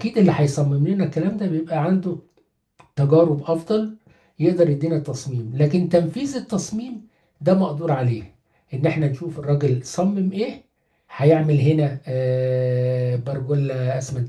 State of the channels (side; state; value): both; identical; correlation 1.00